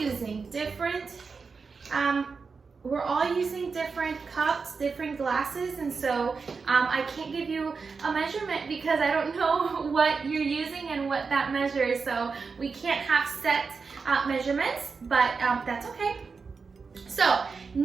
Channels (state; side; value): quieter; left; 4.9 dB